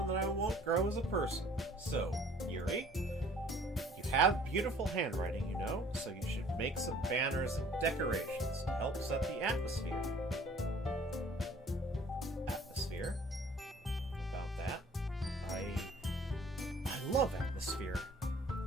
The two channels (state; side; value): normal; both; correlation 0.54